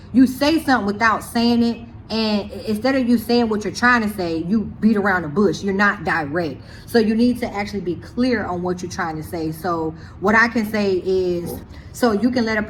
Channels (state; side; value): identical; both; correlation 1.00